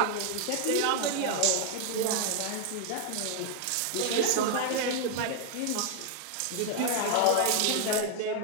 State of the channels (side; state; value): both; different; correlation 0.00